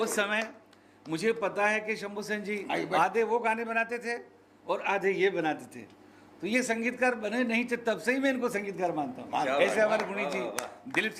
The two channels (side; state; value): both; identical; correlation 1.00